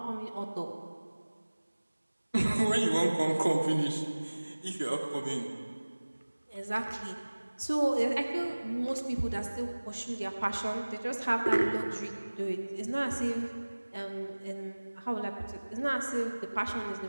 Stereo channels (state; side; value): inverted; both; correlation -1.00